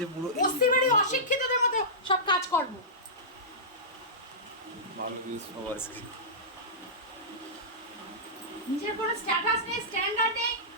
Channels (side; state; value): both; normal; correlation -0.16